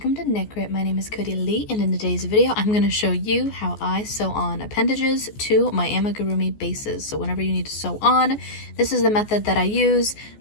to Knit Grit. My name is Cody Lee, and in today's video I'm going to show you how I sew on appendages to my amigurumi bases. So whenever you need to sew on, this is the method that I use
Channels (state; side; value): late; right; 14 ms